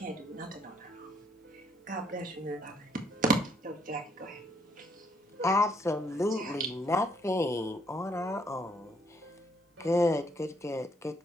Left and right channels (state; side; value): normal; both; correlation 0.70